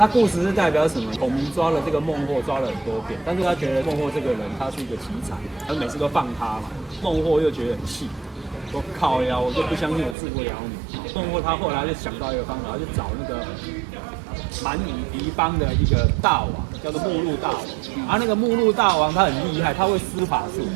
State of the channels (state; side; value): drops out; left; at 10.2 s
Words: 故事是代表什么？孔明抓了这个孟获，抓了很多遍，但是他觉得孟获这个人他是一个奇才，他每次都放他嘛。孟获又觉得很气，说靠呀，我就不相信我治不了你。孟获他后来就想到一个方法，他就找那个蛮夷敌邦的一个大王，叫做目录大王。而那个目录大王他很厉害，他会施法术，